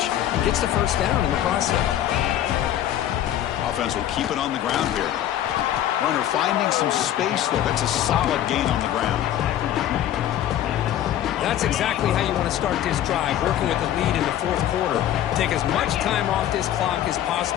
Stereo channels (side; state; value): right; quieter; 11.7 dB